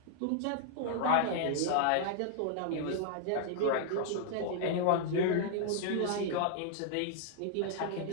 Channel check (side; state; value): both; different; correlation -0.01